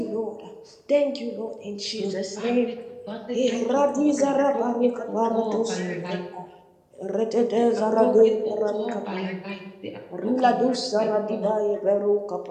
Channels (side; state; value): both; identical; correlation 1.00